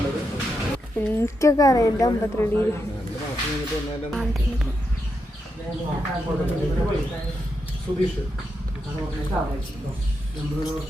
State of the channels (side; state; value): both; normal; correlation 0.84